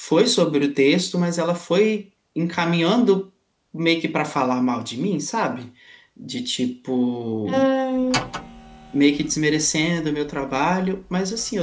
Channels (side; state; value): both; identical; correlation 1.00